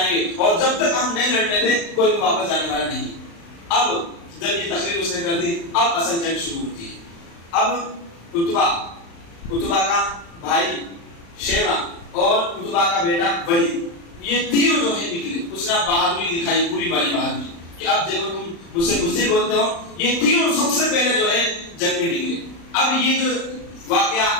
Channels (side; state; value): right; late; 35 ms